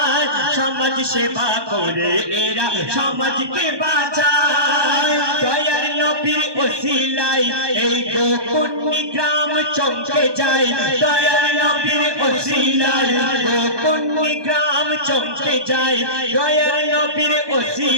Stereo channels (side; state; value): left; late; 1.2 ms